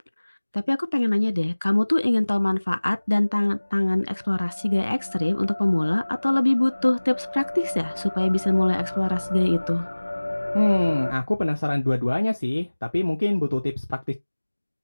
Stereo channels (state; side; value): inverted; both; correlation -1.00